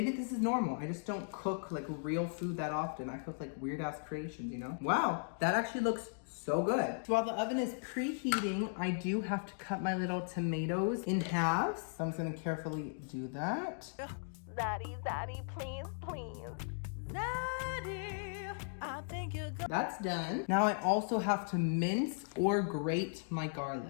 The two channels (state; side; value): silent; right; digital silence